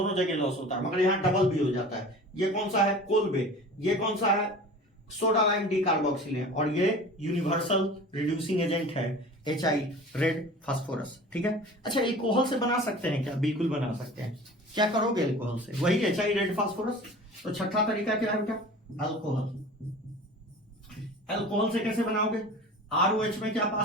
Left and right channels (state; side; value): normal; both; correlation 0.39